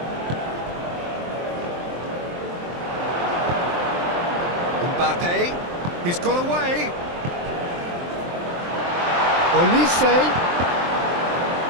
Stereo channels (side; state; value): left; late; 23 ms